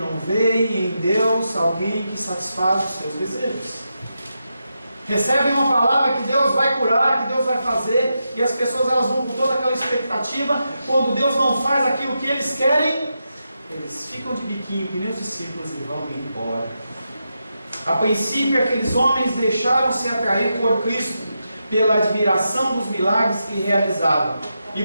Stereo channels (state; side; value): inverted; both; correlation -0.87